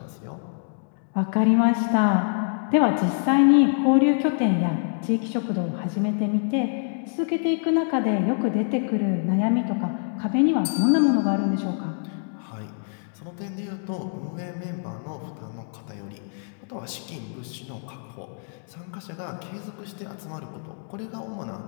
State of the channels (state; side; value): silent; right; digital silence